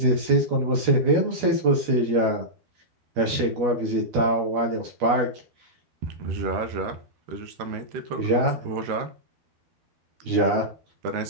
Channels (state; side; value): late; left; 12 ms